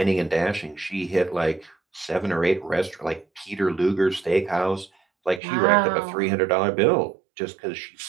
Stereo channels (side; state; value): left; drops out; at 5.4 s